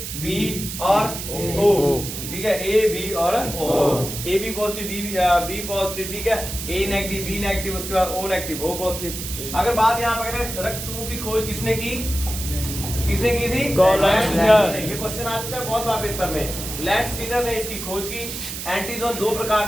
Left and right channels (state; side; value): noise; right; hiss, 7 dB below the sound